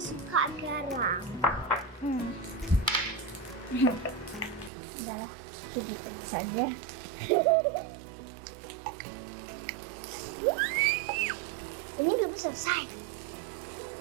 suka garam. Udahlah, segitu saja. Ini belum selesai.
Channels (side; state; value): left; drops out; at 4.7 s